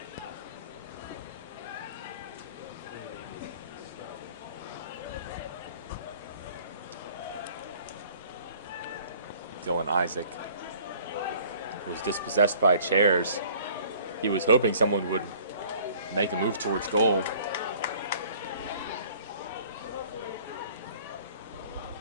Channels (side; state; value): both; inverted; correlation -0.53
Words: Dylan Isaac was dispossessed by chairs. He was hoping someone would make a move towards goal.